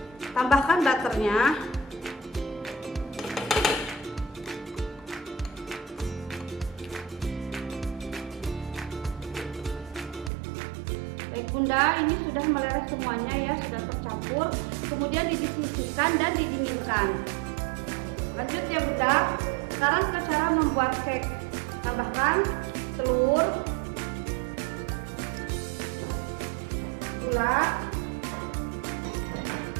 Tambahkan butternya. Baik bunda, ini sudah meleleh semuanya ya, sudah tercampur. Kemudian disisihkan dan didinginkan. Lanjut ya bunda. Sekarang ke cara membuat cake. Tambahkan telur, gula,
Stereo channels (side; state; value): left; drops out; at 10.3 s